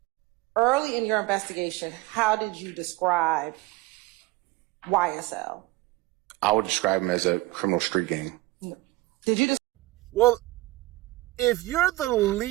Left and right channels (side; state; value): left; quieter; 19.5 dB